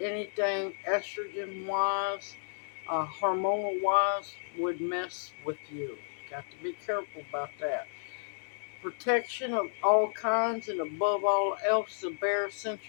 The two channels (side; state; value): right; silent; digital silence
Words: anything estrogen wise, hormonal wise, would mess with you. Got to be careful about that. Protection of all kinds, and above all else, the bare